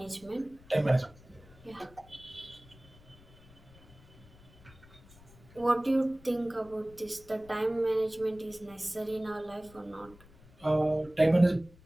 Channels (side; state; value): left; noise; rumble, 24 dB below the sound